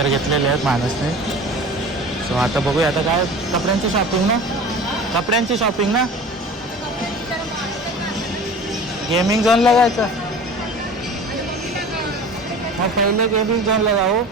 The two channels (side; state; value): both; normal; correlation 0.39